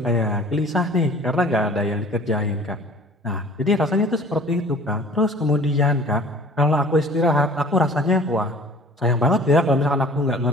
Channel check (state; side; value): normal; both; correlation 0.47